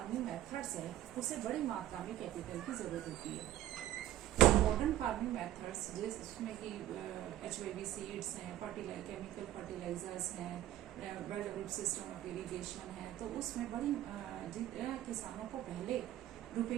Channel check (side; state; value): left; quieter; 13.6 dB